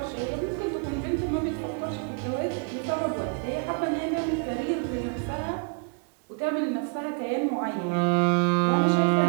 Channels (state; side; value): quieter; left; 38.7 dB